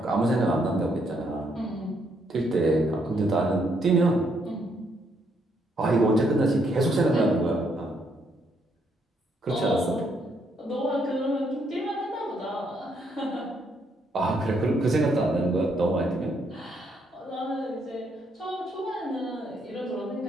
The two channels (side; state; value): both; normal; correlation 0.73